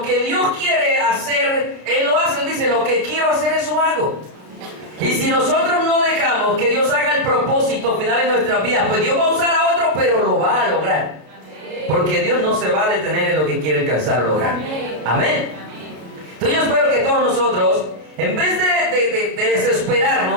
que Dios quiere hacer, Él lo hace. Él dice, lo que quiero hacer, eso hago. Y si nosotros no dejamos que Dios haga el propósito final en nuestras vidas, pues Dios va a usar a otro, pero lo va a lograr. Porque Dios no se va a detener en lo que quiere alcanzar o lograr. Amén. Entonces yo espero que todos nosotros, en vez de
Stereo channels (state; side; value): late; left; 32 ms